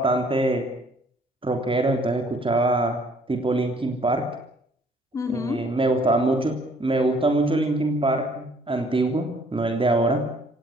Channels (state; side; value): normal; both; correlation 0.60